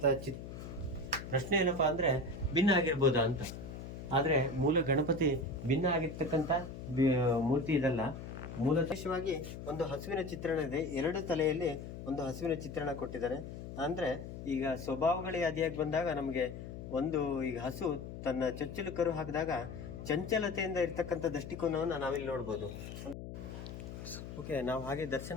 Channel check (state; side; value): noise; left; hum, 10 dB below the sound